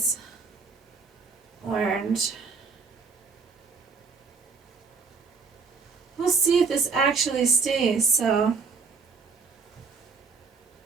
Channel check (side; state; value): left; quieter; 4.9 dB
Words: orange. We'll see if this actually stays. So,